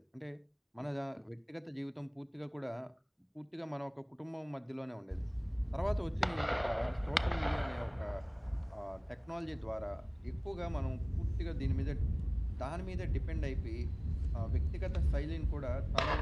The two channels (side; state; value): both; identical; correlation 1.00